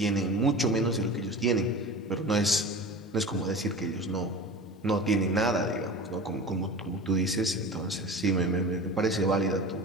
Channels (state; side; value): normal; both; correlation 0.34